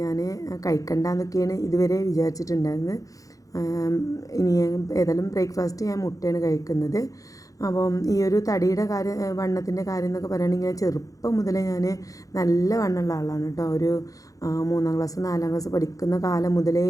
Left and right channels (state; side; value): late; right; 0.17 ms